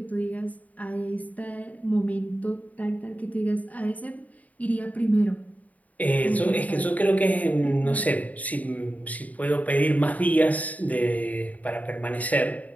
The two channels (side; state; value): right; late; 0.073 ms